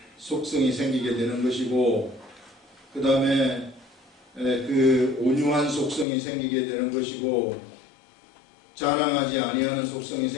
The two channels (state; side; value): drops out; right; at 6.1 s